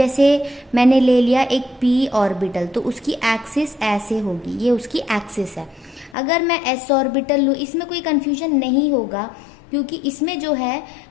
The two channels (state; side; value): drops out; right; at 6.2 s